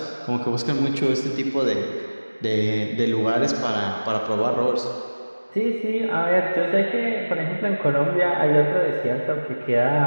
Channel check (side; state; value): both; inverted; correlation -1.00